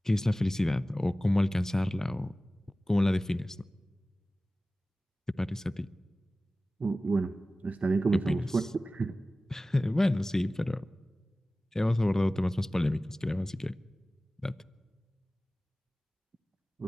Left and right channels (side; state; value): both; normal; correlation 0.96